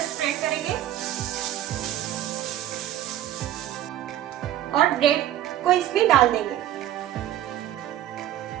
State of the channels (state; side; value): quieter; left; 12.5 dB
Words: स्प्रेड करेंगे और ब्रेड को इसमें डाल देंगे।